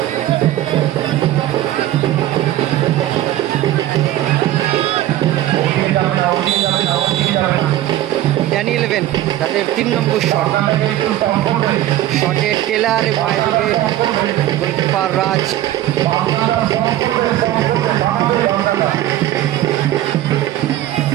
ওদিকে যাবে না, ওদিকে যাবে না, ওদিকে যাবে না। ড্যানি ইলেভেন তাদের 3 নম্বর শট, আপনাকে একটু স্টপ করবে। শটে টেলার এবং এদিকে গোলকিপার রাজ। বাংলাটা স্টপ করবে, স্টপ করবে, ভাঙবে বাংলাটা।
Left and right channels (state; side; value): quieter; left; 13.8 dB